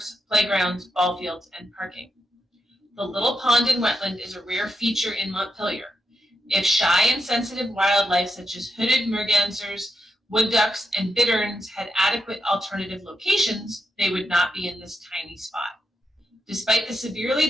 playgrounds, ball fields, and parking. The little pond and wetland is a rare feature in Montpelier. If shy and sensitive wildlife such as hooded mergansers, wood ducks, and bitterns had adequate alternative locations, they would not be in this tiny spot. Despite the severely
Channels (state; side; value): normal; both; correlation 0.84